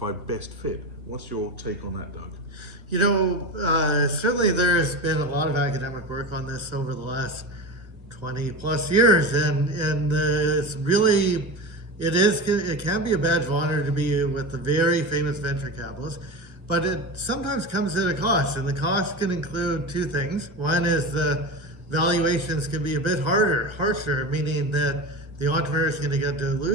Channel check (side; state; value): left; late; 1.3 ms